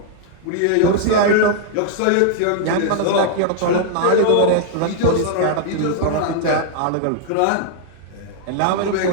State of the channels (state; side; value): different; both; correlation 0.00